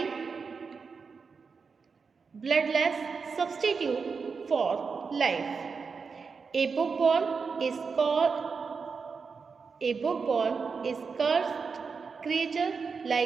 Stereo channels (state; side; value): quieter; left; 5.2 dB